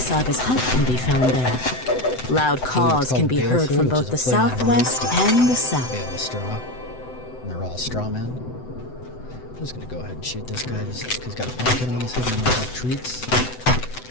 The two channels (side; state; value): right; late; 7.9 ms